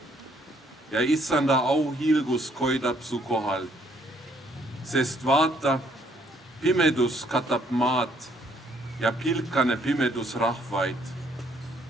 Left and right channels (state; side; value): normal; both; correlation 0.66